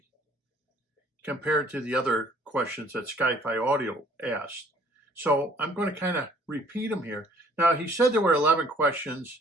compared to the other questions that SkyFi Audio asked. So I'm going to kind of repeat them here. Now, he said there were 11 questions.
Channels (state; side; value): normal; both; correlation 0.57